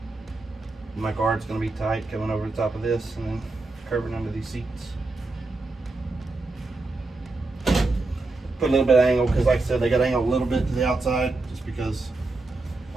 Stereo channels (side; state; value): left; quieter; 3.3 dB